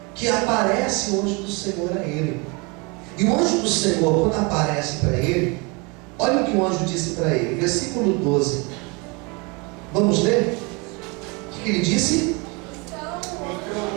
que aparece o anjo do Senhor a ele. E o anjo do Senhor, quando aparece para ele, olha o que o anjo disse para ele, versículo 12. Vamos ler? O que ele disse?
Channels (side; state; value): left; quieter; 29.4 dB